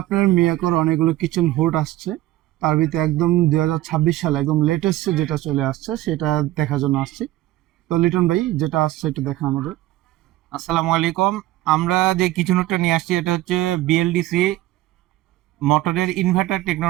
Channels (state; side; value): quieter; left; 16.0 dB